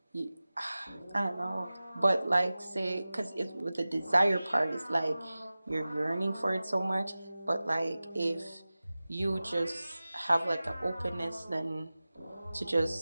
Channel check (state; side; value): inverted; both; correlation -0.97